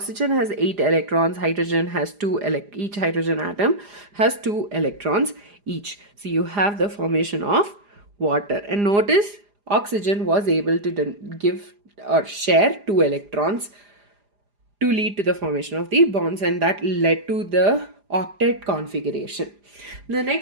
has 8 electrons, hydrogen has 2, each hydrogen atom has 2 electrons each. So you have the formation of water. And notice oxygen was able to give or share 2 electrons to lead to the formation of the bonds, and that led to the octet configuration. The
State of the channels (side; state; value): left; late; 4.9 ms